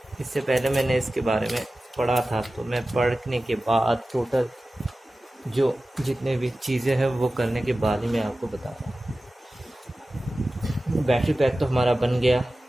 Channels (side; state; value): both; normal; correlation 0.95